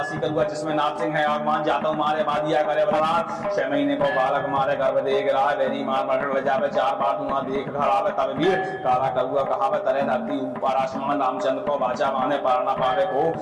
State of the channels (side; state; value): both; identical; correlation 1.00